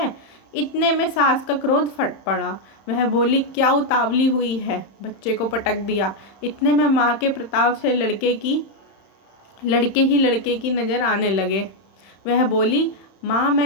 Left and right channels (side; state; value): right; late; 31 ms